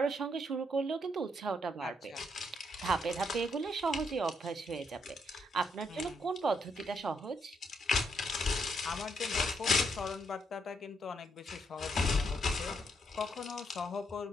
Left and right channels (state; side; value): normal; both; correlation 0.76